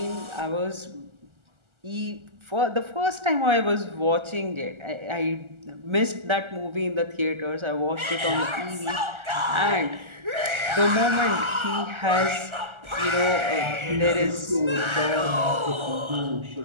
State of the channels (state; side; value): late; left; 1.4 ms